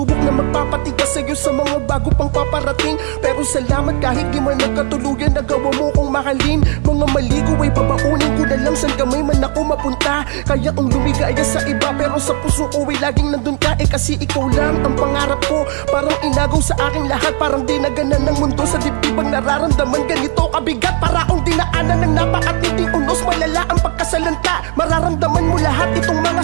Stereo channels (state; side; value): quieter; left; 36.9 dB